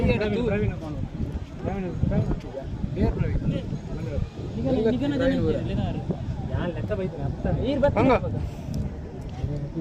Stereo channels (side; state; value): both; identical; correlation 1.00